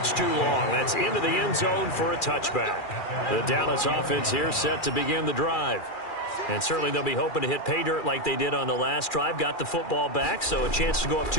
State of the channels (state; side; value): late; right; 2.4 ms